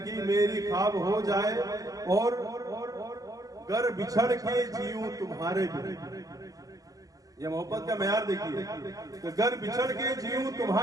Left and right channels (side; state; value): left; late; 0.17 ms